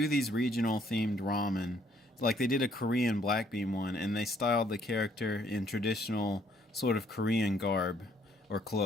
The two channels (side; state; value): both; normal; correlation 0.66